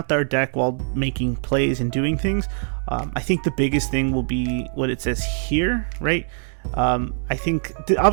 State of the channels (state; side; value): silent; left; digital silence